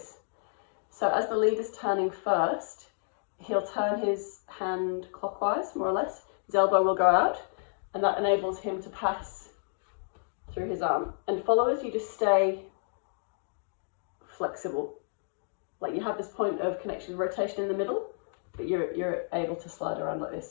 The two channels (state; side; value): silent; right; digital silence